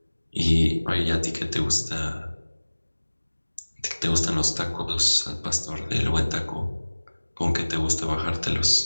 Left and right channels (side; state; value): both; inverted; correlation -1.00